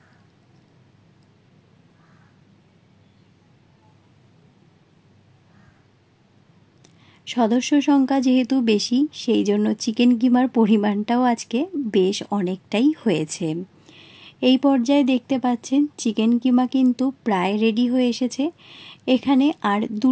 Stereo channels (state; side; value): identical; both; correlation 1.00